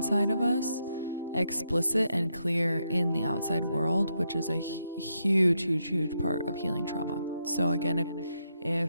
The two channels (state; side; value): inverted; both; correlation -0.81